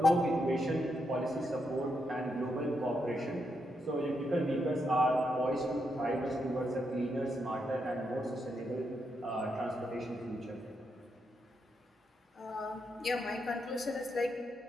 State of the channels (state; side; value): normal; both; correlation 0.81